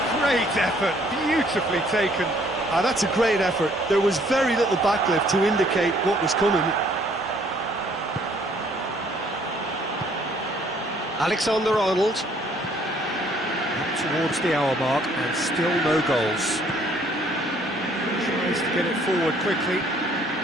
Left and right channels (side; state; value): both; normal; correlation 0.62